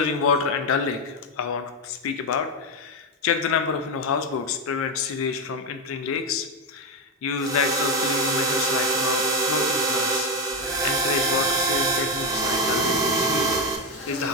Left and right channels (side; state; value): both; normal; correlation 0.08